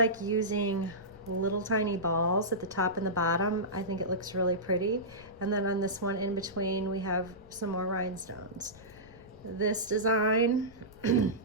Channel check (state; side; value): noise; left; rumble, 23 dB below the sound